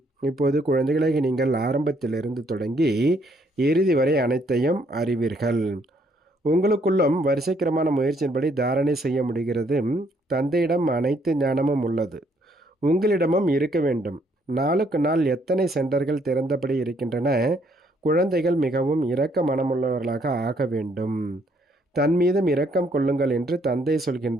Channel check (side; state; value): both; normal; correlation 0.69